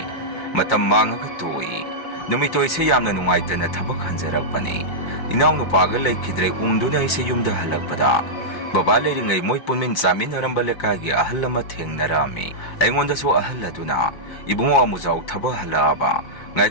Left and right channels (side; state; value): right; late; 5.7 ms